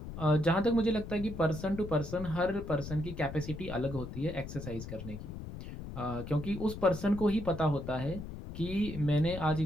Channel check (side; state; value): left; noise; rumble, 9 dB below the sound